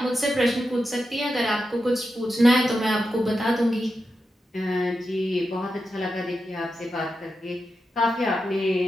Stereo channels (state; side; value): normal; both; correlation 0.89